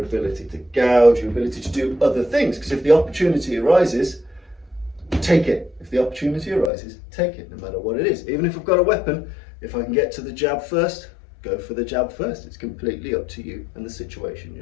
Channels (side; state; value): right; drops out; at 6.7 s